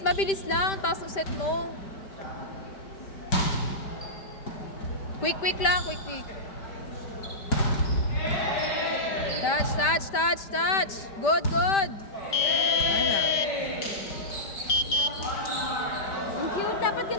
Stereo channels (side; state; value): right; late; 5.1 ms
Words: mabilis lang. Taas ng set mo. Quick, quick lang. Quick, quick. Touch, touch, touch, touch. Good, good. Ano? Ang cute. Dapat